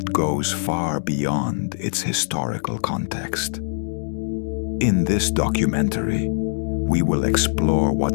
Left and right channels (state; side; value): silent; right; digital silence